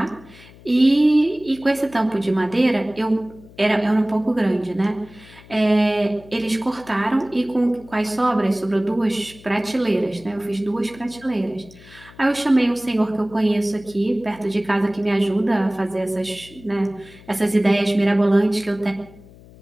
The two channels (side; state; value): left; noise; hum, 22 dB below the sound